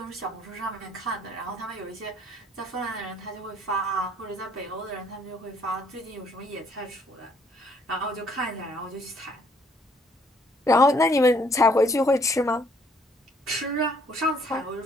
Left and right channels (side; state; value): both; normal; correlation 0.65